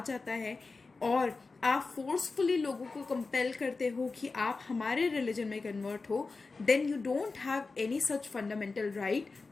जाता है और आप फोर्सफुली लोगों को कंपेल करते हो कि आप हमारे रिलीजन में कन्वर्ट हो, then you don't have any such fundamental right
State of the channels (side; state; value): right; quieter; 4.0 dB